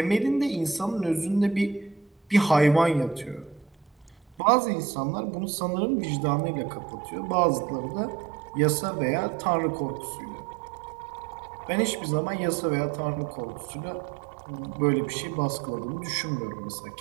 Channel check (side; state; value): left; drops out; at 4.4 s